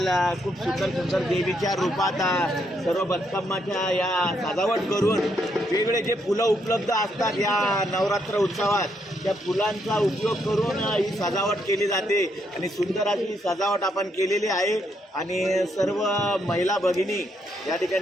खूप सुंदर सुंदर देवीच्या रूपात सर्व बतकम्माच्या या सजावट करून वेगवेगळे जे फुलं उपलब्ध असतात या नवरात्र उत्सवात त्या फुलांचा उपयोग करून ही सजावट केली जाते आणि सुंदर अशी सजावट आपण केलेली आहे आणि सर्व महिला भगिनी या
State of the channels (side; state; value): both; normal; correlation 0.76